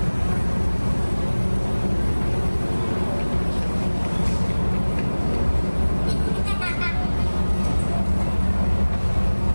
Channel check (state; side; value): inverted; both; correlation -1.00